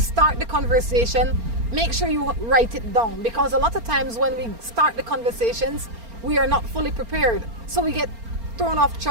the conversation, make sure you write it down, because a lot of times when we start the conversations, we are not fully prepared. So we get thrown off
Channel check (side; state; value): left; late; 4.4 ms